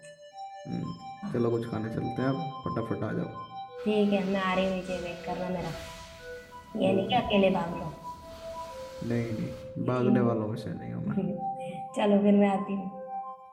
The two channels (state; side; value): identical; both; correlation 1.00